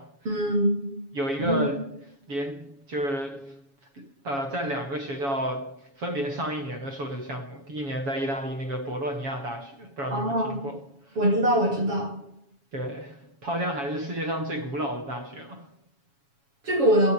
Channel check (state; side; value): late; left; 7.2 ms